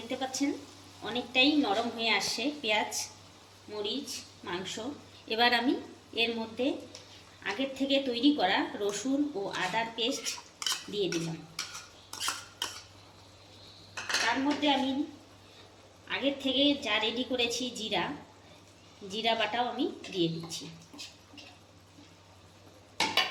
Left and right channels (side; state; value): both; identical; correlation 1.00